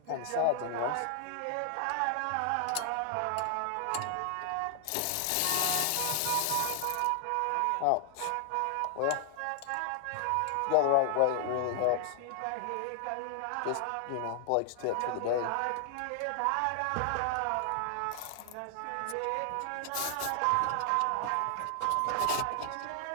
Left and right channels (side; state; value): both; different; correlation 0.00